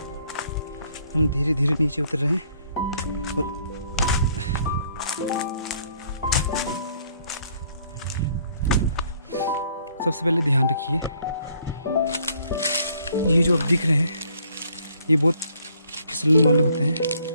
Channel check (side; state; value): both; inverted; correlation -0.64